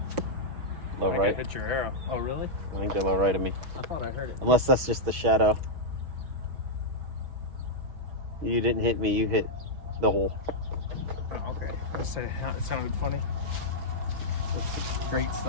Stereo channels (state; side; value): late; left; 6.2 ms